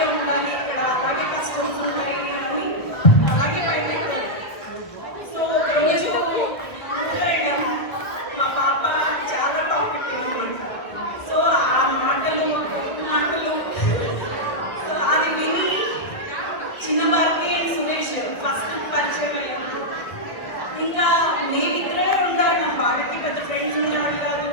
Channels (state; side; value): late; right; 1.7 ms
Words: ఉండాలి ఇక్కడ, అలాగే కష్టమ్స్ ఉంటాయి అని అలాగే బయటకు. సో రోజు వెళ్ళాము. మా పాప చాలా టాపిక్ అయింది. సో ఆ మాటలు సో అది విని చిన్నవారికి సురేష్ ఫస్ట్ పరిచయం అయ్యింది. ఇంకా మేమిద్దరే ఉంటాడు, వాళ్ళకి పెద్ద ఫ్రెండ్స్ ఉండేవాళ్ళు కాదు.